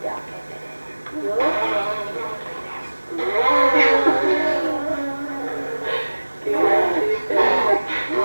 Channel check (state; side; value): inverted; both; correlation -1.00